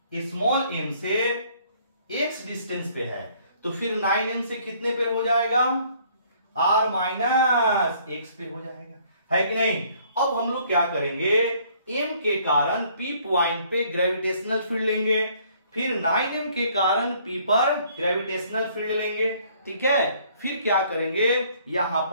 m से x डिस्टेंस पे है, तो फिर 9m से कितने पे हो जाएगा, r माइनस x पे हो जाएगा, है कि नहीं। अब हम लोग क्या करेंगे, m के कारण P पॉइंट पे ग्रेविटेशनल फील्ड लेंगे, फिर 9m के कारण P पर ग्रेविटेशनल फील्ड लेंगे। ठीक है, फिर क्या करेंगे, यहां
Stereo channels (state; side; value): inverted; both; correlation -0.61